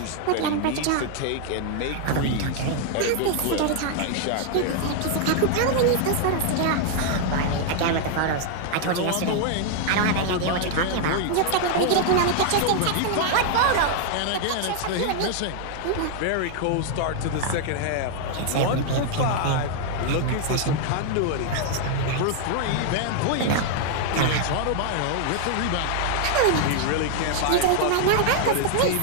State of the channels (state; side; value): different; both; correlation 0.00